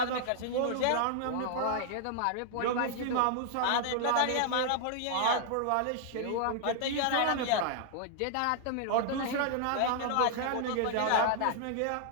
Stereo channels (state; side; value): different; both; correlation -0.01